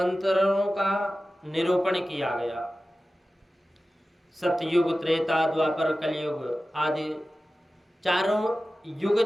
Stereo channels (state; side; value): normal; both; correlation 0.95